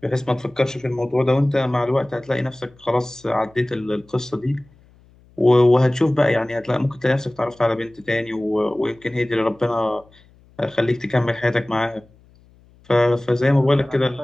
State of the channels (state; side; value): noise; left; hum, 29 dB below the sound